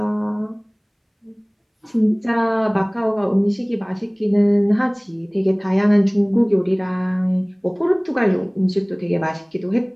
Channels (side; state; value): both; identical; correlation 1.00